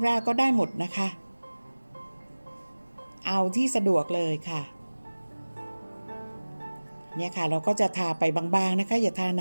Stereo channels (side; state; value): both; inverted; correlation -1.00